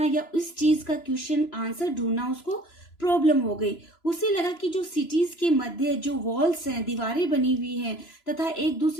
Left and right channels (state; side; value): late; right; 3.0 ms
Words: या इस चीज का क्वेश्चन आंसर ढूंढना उसको प्रॉब्लम हो गई। उसे लगा कि जो सिटीज के मध्य जो वॉल्स हैं, दीवारें बनी हुई हैं तथा एक